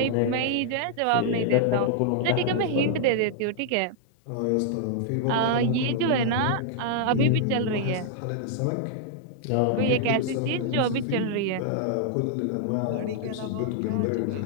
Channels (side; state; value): both; different; correlation -0.01